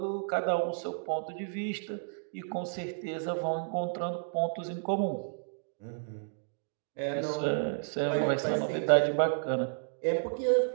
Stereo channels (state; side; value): silent; left; digital silence